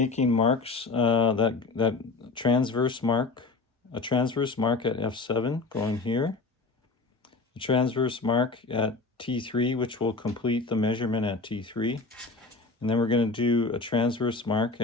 marks, that transverse mark, a transverse mark at F7 going here, a transverse mark at T3, which will complete the measurement at T3, and then we're going to do a transverse mark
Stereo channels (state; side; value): quieter; right; 3.8 dB